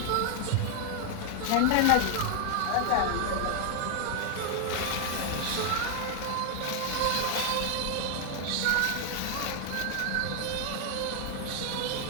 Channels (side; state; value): both; different; correlation 0.00